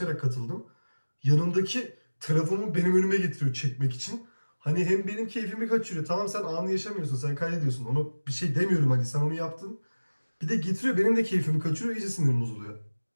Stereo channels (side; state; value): both; inverted; correlation -1.00